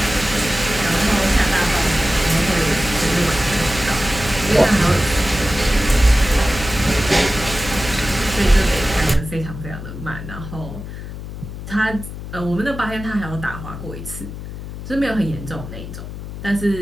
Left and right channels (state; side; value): noise; left; hum, 10 dB below the sound